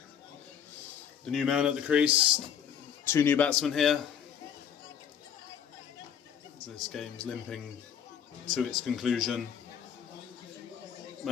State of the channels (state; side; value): quieter; right; 8.5 dB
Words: the new man at the crease. 2 new batsmen here. This game's limping to its conclusion.